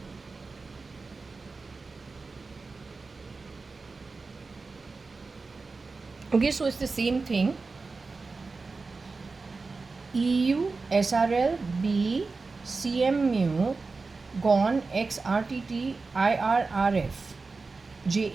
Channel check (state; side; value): quieter; left; 4.0 dB